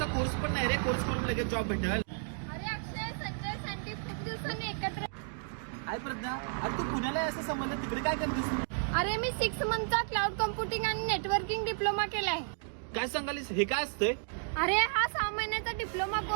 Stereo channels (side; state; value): left; silent; digital silence